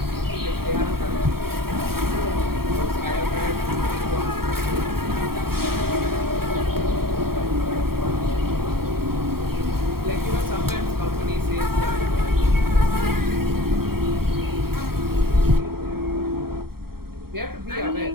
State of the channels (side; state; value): left; late; 0.94 ms